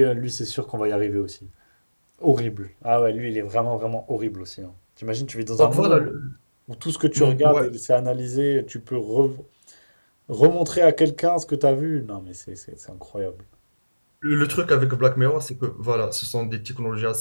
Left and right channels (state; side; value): inverted; both; correlation -1.00